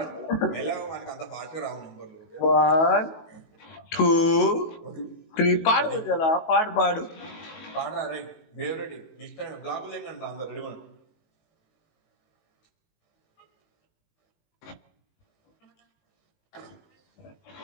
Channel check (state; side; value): late; right; 19 ms